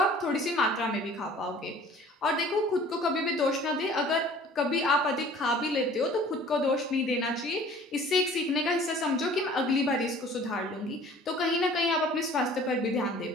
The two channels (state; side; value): normal; both; correlation 0.49